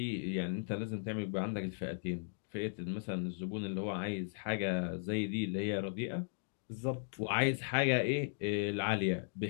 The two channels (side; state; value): right; silent; digital silence